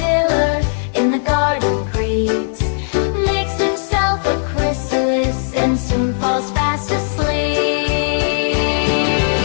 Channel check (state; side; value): silent; right; 68 dB below the other